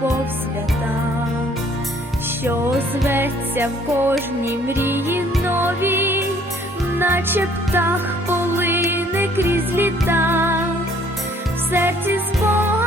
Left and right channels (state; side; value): normal; both; correlation 0.60